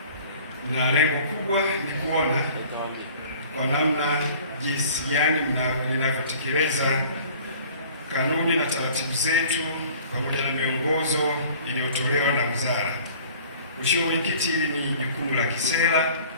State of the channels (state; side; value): inverted; both; correlation -0.49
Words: na lengo kubwa ni kuona kwa namna jinsi gani linavyotekeleza kanuni na taratibu zetu pamoja na miongozo iliyotolewa na wizara. Mheshimiwa Mwenyekiti, hili ni jukumu la kisera.